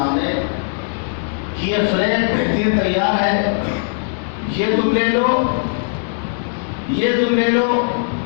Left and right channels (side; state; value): right; silent; digital silence